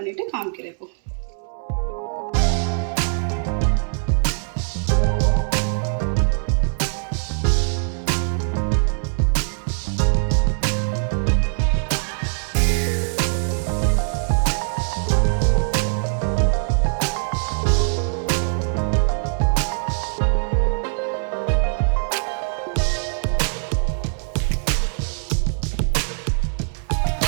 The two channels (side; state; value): left; silent; 64 dB below the other